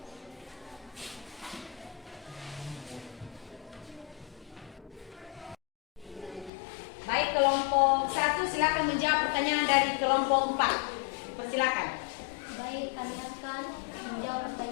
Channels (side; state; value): right; drops out; at 6.5 s